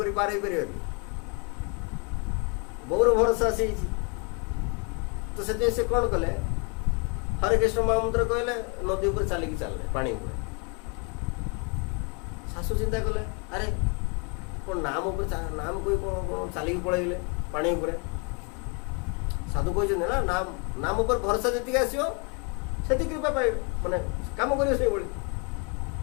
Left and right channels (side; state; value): right; quieter; 34.9 dB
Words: पार हो पार बहुर भरोसा से तो से कौन कले हरे कृष्ण महामंत्र कहले नदी ऊपर चलिकी चलले पानी ऊपर शाशु चिंता कले अरे कौन नाम ऊपर नाम कोई कौन चलिकी पलैले पानी ऊपर साधु कहते ना नाम नाम ऊपर भरोसा जी आसो से कृपा पाए माने काम कर